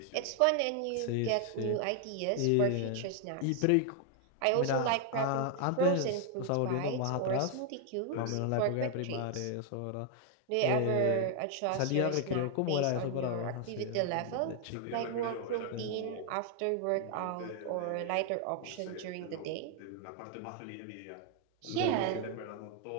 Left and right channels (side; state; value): both; different; correlation 0.00